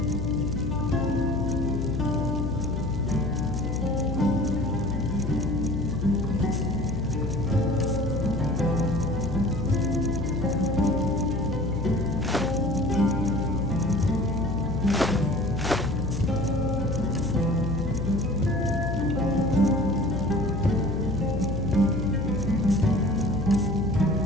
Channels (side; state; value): left; noise; hum, 3 dB below the sound